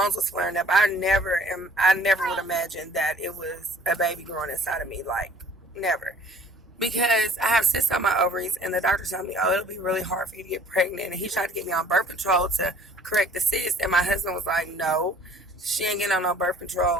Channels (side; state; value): both; normal; correlation 0.53